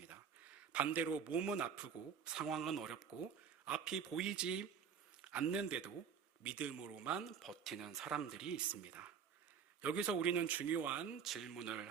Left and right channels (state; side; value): quieter; left; 7.0 dB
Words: 반대로 몸은 아프고 상황은 어렵고 앞이 보이지 않는데도 믿음으로만 버티는 사람들이 있습니다. 여기서 우리는 중요한 질문을